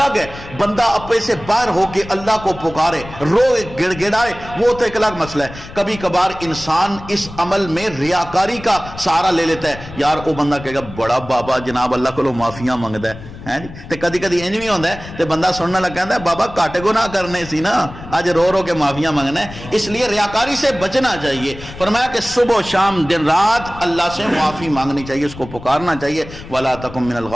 ہے، بندہ اپنے سے باہر ہو کے اللہ کو پکارے، روئے، گڑ گڑائے، وہ تو ایک الگ مسئلہ ہے. کبھی کبھار انسان اس عمل میں ریاکاری کا سہارا لے لیتا ہے. یار وہ بندہ کہے گا بڑا بابا جناب اللہ کو معافیاں منگتا ہے تے کدی کدی انج بھی ہوتا ہے تے بندہ سننا لگ کہتا ہے بابا کٹ گناہ کرنے سی نا، اج رو رو کے معافیاں منگنا ہے. اس لیے ریاکاری سے بچنا چاہیے. فرمایا کہ صبح و شام دن رات اللہ سے معافی مانگنی چاہیے، اس کو پکارنا چاہیے. ولا تکن من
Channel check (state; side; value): noise; left; rumble, 15 dB below the sound